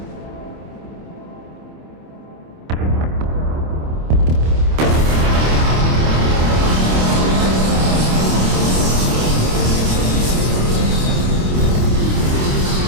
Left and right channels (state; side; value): late; left; 27 ms